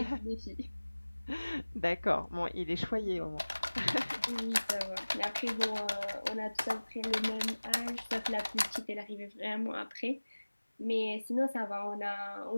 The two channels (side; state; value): both; inverted; correlation -1.00